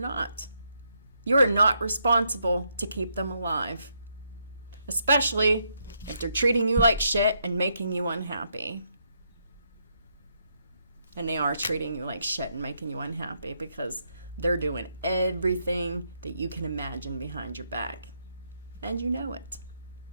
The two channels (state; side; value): inverted; both; correlation -0.77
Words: You are not responsible to keep them alive. Especially if they're treating you like shit and making you unhappy. And they are treating you like shit and making you unhappy because they're doing everything that you can imagine behind your back. And you know it.